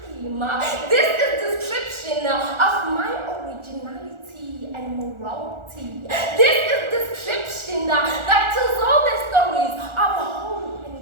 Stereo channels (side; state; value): left; late; 1.4 ms